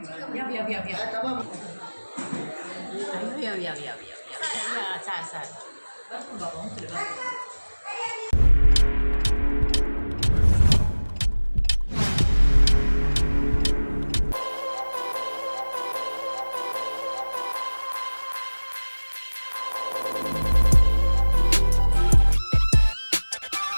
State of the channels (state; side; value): inverted; both; correlation -1.00